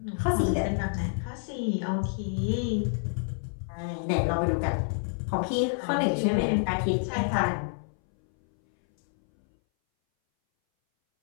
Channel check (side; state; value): right; silent; 59 dB below the other